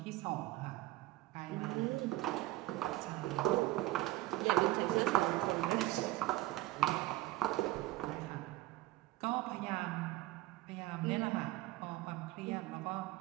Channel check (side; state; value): left; quieter; 17.3 dB